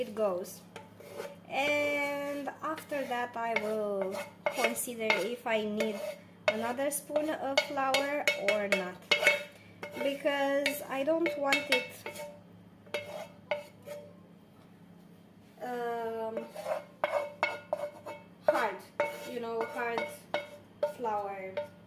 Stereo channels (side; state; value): both; identical; correlation 1.00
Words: goes, and after that I will consider if I need another spoon of flour or not, because I don't want it hard, hard flour,